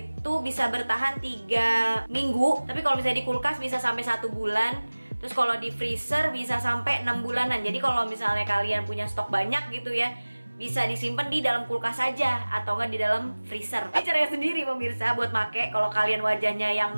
bisa bertahan 3 minggu, tapi kalau misalnya di kulkas bisa sampai 1 bulan. Terus kalau di freezer bisa sampai 6 bulanan. Jadi kalau misalnya kalian punya stok banyak gitu ya, bisa disimpan di dalam kulkas saja atau enggak di dalam freezer. Ini caranya sendiri pemirsa buat make. Kalau kalian wajahnya yang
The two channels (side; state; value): both; inverted; correlation -1.00